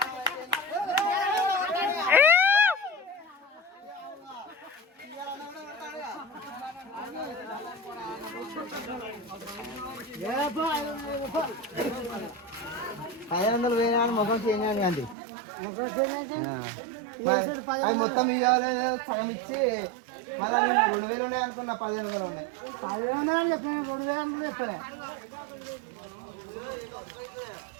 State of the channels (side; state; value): left; drops out; at 15.2 s